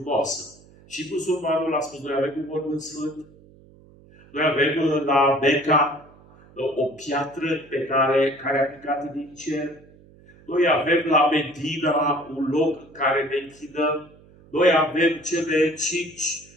Și musulmanul a spus, noi avem un mormânt sfânt. Noi avem la Mecca o piatră pe care a picat din cer. Noi avem la Medina un loc care ne închinăm. Noi avem cele 5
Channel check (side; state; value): right; noise; hum, 25 dB below the sound